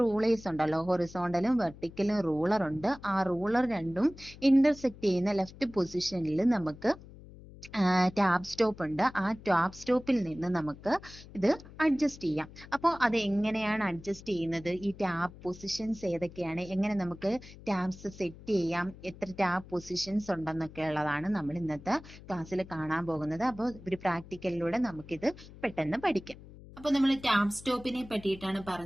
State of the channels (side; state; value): left; noise; hum, 18 dB below the sound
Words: ഉണ്ടല്ലോ, ഹൊറിസോണ്ടലും വെർട്ടിക്കലും റൂളർ ഉണ്ട്. ആ റൂളർ രണ്ടും ഇന്റർസെക്ട് ചെയ്യുന്ന ലെഫ്റ്റ് പൊസിഷനിൽ നമുക്ക് ടാബ് സ്റ്റോപ്പ് ഉണ്ട്. ആ ടാബ് സ്റ്റോപ്പിൽ നിന്ന് നമുക്ക് ഇത് അഡ്ജസ്റ്റ് ചെയ്യാം. അപ്പോൾ അത് എങ്ങനെയാണ് അഡ്ജസ്റ്റ് ചെയ്യുന്നത്, ഈ ടാബ് പൊസിഷൻസ് ഏതൊക്കെയാണ്, എങ്ങനെ നമുക്ക് ടാബ്സ് സെറ്റ് ചെയ്യാം, എത്ര ടാബ് പൊസിഷൻസ് ഉണ്ടെന്നൊക്കെ ഉള്ളതാണ് നമ്മൾ ഇന്നത്തെ ക്ലാസ്സിൽ കാണാൻ പോകുന്നത്. അപ്പോൾ ഒരു പ്രാക്ടിക്കലിലൂടെ നമുക്കിത് പെട്ടെന്ന് പഠിക്കാം. അപ്പൊ നമ്മൾ ടാബ് സ്റ്റോപ്പിനെ പറ്റിയിട്ടാണ്